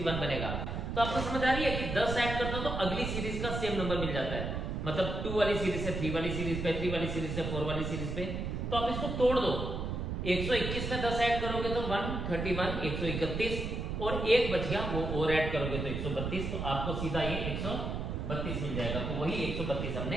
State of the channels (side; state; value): right; noise; rumble, 3 dB below the sound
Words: बनेगा। तो आपको समझ आ रही है कि 10 ऐड करते हो तो अगली सीरीज का सेम नंबर मिल जाता है, मतलब 2 वाली सीरीज से 3 वाली सीरीज पे, 3 वाली सीरीज से 4 वाली सीरीज पे। तो आप इसको तोड़ दो, 121 में 10 ऐड करोगे तो 131, 131 और एक बच गया वो और ऐड करोगे तो 132, तो आपको सीधा ये 132 मिल जाएगा। तो वही 132